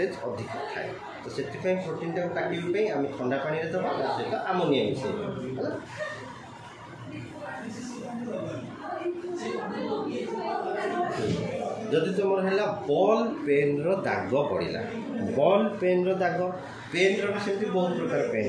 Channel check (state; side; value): identical; both; correlation 1.00